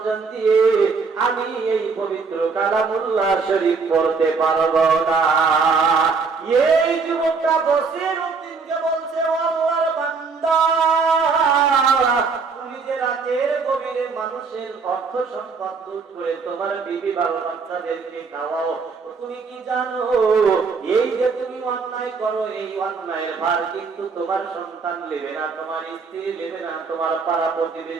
দিয়ে আমি এই পবিত্র কালামুল্লাহ শরীফ পড়তে পারবো না। এই যুবকটা বসির উদ্দিনকে বলছে, ও আল্লাহর বান্দা, তুমি যে রাতের গভীরে মানুষের অর্থ সম্পদ লুট করে তোমার বিবি বাবা বাচ্চাদেরকে খাওয়াও, তুমি কি জানো এই যে তুমি অন্যায় করো, এই অন্যায়ের ভার কিন্তু তোমার সন্তান নেবে না, তোমার স্ত্রী নেবে না, তোমার পাড়া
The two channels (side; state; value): left; quieter; 4.9 dB